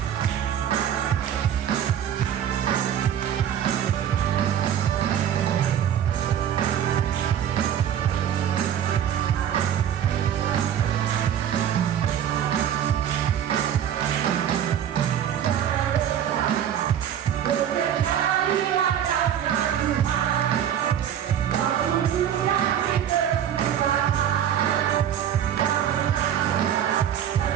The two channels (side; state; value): left; quieter; 9.8 dB